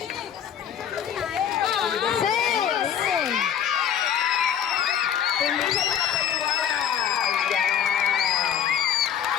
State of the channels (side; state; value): right; quieter; 9.1 dB